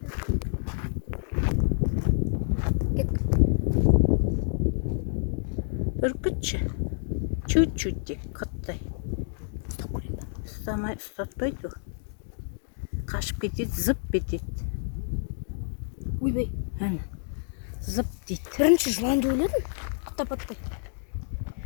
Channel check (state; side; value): silent; right; digital silence